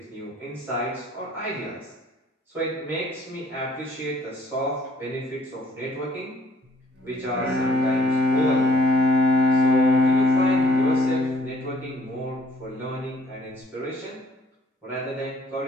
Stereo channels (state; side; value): normal; both; correlation 0.60